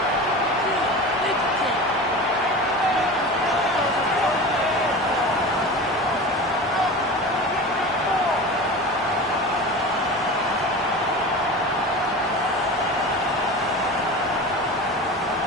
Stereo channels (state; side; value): normal; both; correlation 0.32